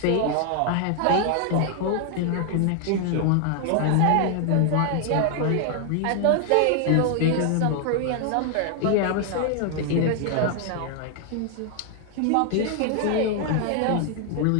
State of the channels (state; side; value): different; both; correlation 0.00